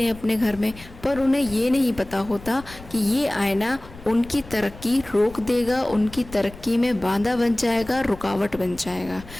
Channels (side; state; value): left; noise; rumble, 18 dB below the sound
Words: हैं अपने घर में, पर उन्हें ये नहीं पता होता कि ये आईना उनकी तरक्की रोक देगा, उनकी तरक्की में बाधा बन जाएगा, रुकावट बन जाएगा।